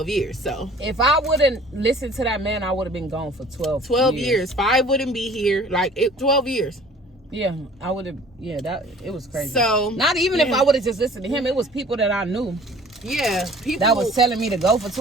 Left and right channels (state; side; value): normal; both; correlation 0.50